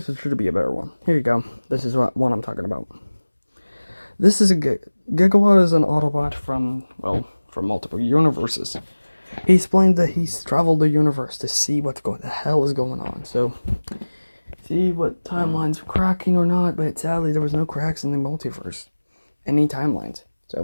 should be a better one. Here you go. This is what one I'm talking about. This is Gigawatt is an Autobot from multiple universes. He explained that he's traveled the universe to see what the hell is going on. So, see what timelines are cracking or not, but sadly there was no cracks in the multiverse. Any timelines.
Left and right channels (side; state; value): both; inverted; correlation -1.00